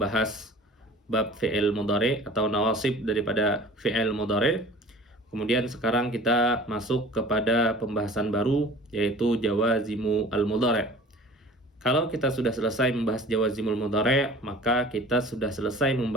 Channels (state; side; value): normal; both; correlation 0.43